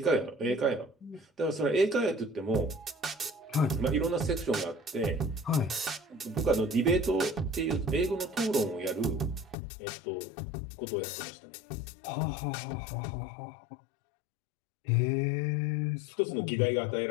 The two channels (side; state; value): right; drops out; at 9.6 s